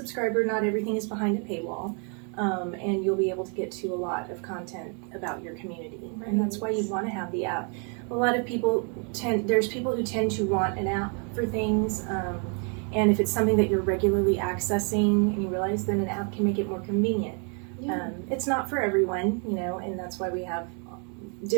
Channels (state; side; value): quieter; left; 38.9 dB